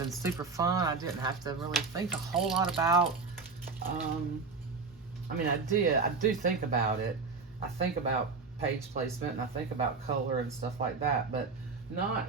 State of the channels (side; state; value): left; quieter; 4.5 dB